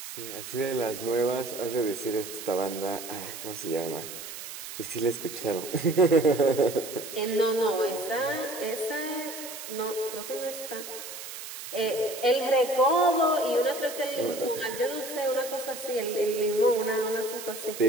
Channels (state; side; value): noise; right; hiss, 10 dB below the sound